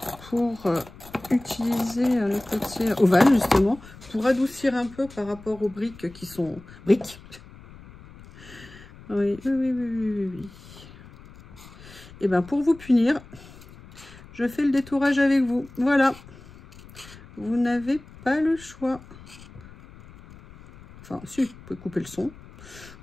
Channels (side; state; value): left; noise; rumble, 20 dB below the sound